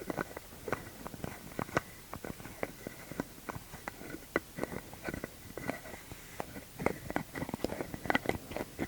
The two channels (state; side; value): identical; both; correlation 1.00